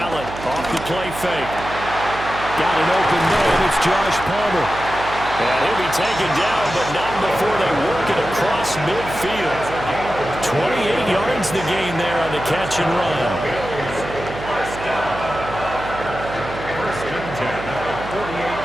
off the play fake. Got an open man. It's Josh Palmer. And he'll be taken down, but not before they work it across midfield. 28 yards the gain there on the catch and run.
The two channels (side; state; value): right; noise; hum, 11 dB below the sound